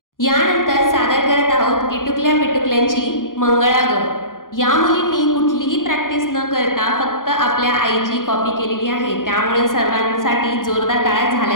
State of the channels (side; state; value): right; late; 0.90 ms